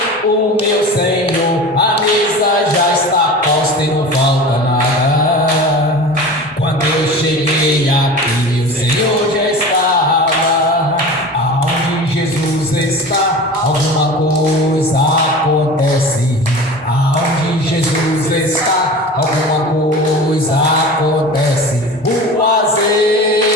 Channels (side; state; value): both; normal; correlation 0.34